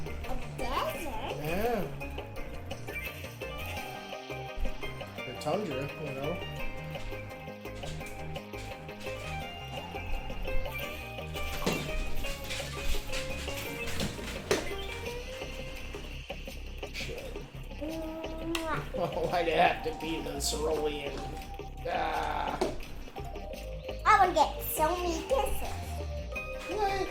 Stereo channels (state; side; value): identical; both; correlation 1.00